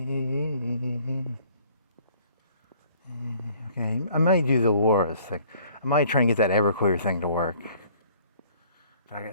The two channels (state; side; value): inverted; both; correlation -0.57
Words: Okay, I might do the Laura's thing. I might try and get that Everclear thing to work.